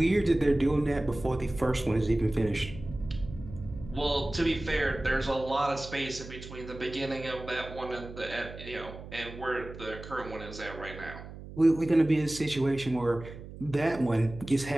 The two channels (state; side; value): noise; right; hum, 13 dB below the sound